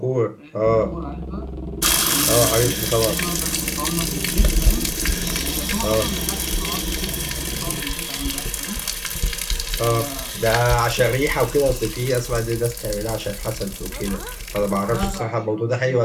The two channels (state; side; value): identical; both; correlation 1.00